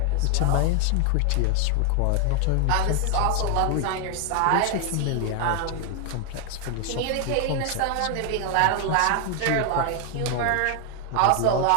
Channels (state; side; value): different; both; correlation 0.00